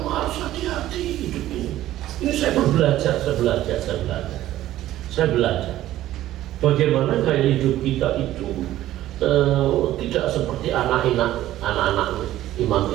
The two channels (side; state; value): left; quieter; 14.0 dB